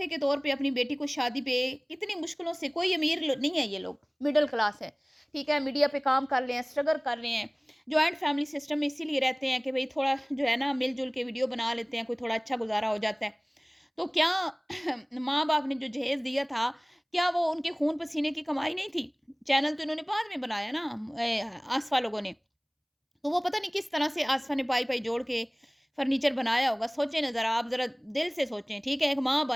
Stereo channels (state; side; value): identical; both; correlation 1.00